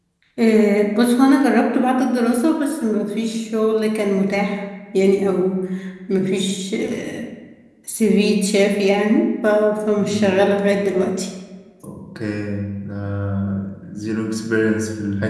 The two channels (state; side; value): identical; both; correlation 1.00